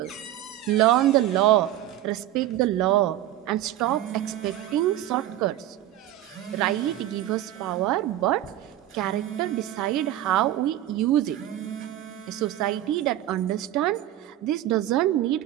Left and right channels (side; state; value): left; quieter; 13.3 dB